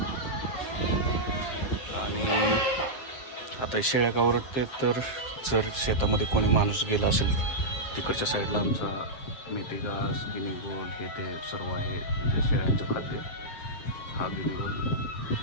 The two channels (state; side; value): late; right; 7.6 ms